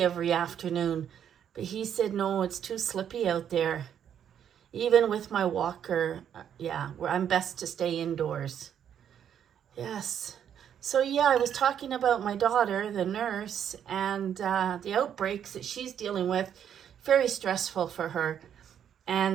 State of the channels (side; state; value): left; quieter; 9.0 dB